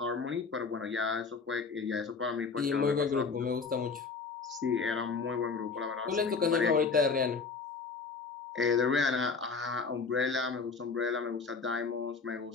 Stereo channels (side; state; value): right; quieter; 4.8 dB